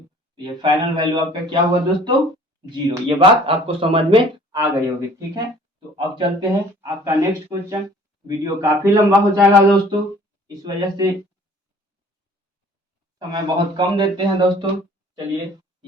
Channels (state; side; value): normal; both; correlation 0.52